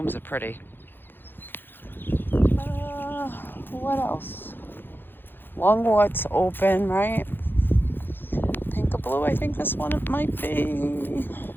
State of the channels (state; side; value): late; right; 0.099 ms